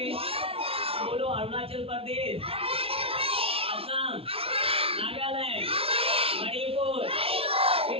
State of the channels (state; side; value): late; left; 0.27 ms